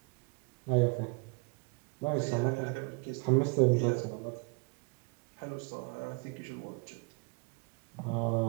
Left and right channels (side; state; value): left; quieter; 32.3 dB